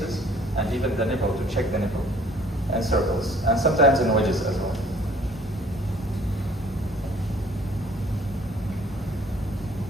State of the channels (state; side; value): normal; both; correlation 0.56